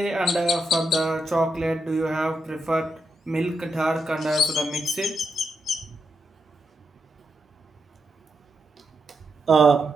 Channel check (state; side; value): normal; both; correlation 0.83